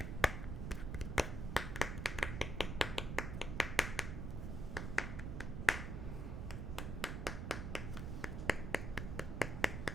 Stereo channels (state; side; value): noise; right; rumble, 3 dB below the sound